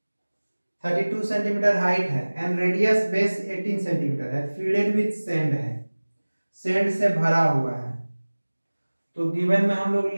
32 सेंटीमीटर हाइट है एंड रेडियस बेस 18 सेंटीमीटर है, फील्डेड विथ सैंड है, सैंड से भरा हुआ है। तो गिवन में हम लोग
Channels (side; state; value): both; inverted; correlation -1.00